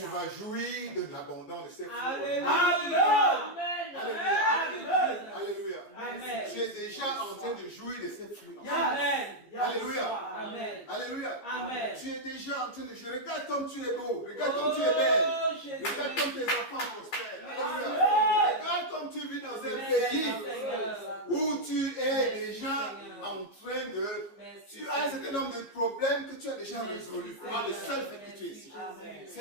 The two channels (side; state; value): right; late; 15 ms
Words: vas jouir de l'abondance de ces fruits. Alléluia. Alléluia. Alléluia. Amen. Tu es déjà en train de jouir de ces fruits. Amen. Alléluia. Amen. Alléluia. Amen. Tu es déjà en train de jouer. Regarde comme tu es beau. Regarde comme tu es belle. Oh, Jésus. Regarde comme tes enfants prospèrent. Alléluia. Amen. Regarde comme tu vis dans un Merci, pays Seigneur. où tu es déjà en train de... Merci. Tu as un certain nombre de problèmes que tu tu as déjà résolu par le seul fait que tu es ici. Amen.